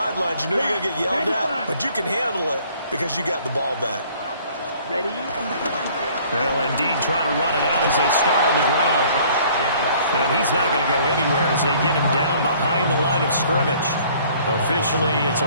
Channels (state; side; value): inverted; both; correlation -0.56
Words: you know you're going to get yelled at, but you can handle it because you got the ball back. Ready? Well, indeed, trying to run it out as they start on the ground. And he's not going to go anywhere as they get him down behind the line of scrimmage. Officially, it's